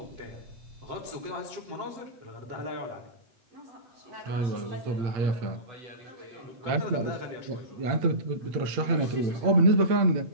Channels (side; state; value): left; late; 8.6 ms